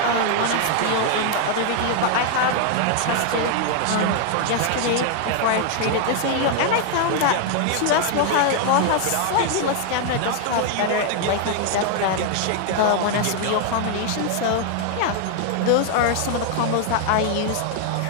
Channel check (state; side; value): different; both; correlation 0.00